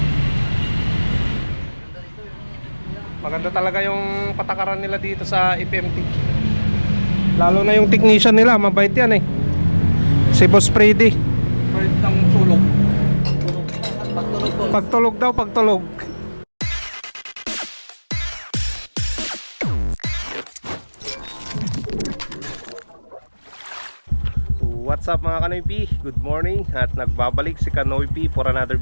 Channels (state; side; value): inverted; both; correlation -1.00